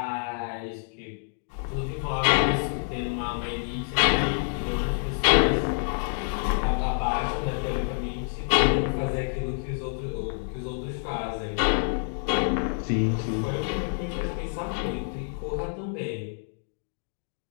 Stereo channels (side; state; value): right; silent; digital silence